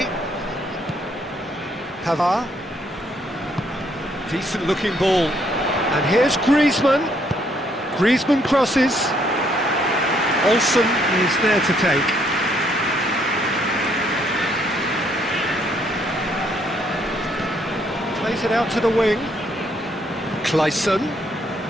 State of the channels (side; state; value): both; normal; correlation 0.69